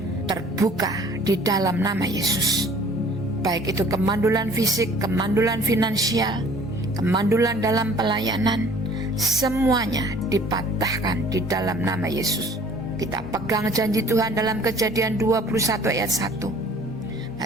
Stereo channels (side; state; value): both; normal; correlation 0.52